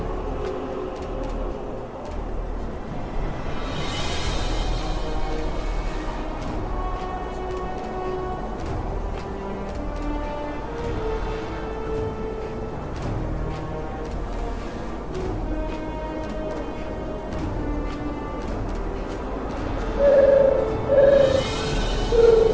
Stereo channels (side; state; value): both; identical; correlation 1.00